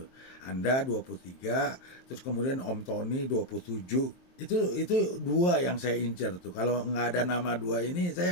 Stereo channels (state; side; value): late; right; 23 ms